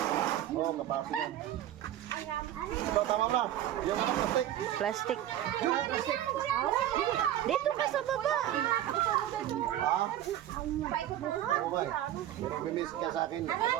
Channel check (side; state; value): left; quieter; 12.3 dB